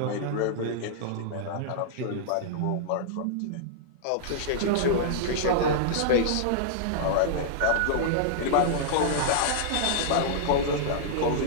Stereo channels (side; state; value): both; different; correlation -0.02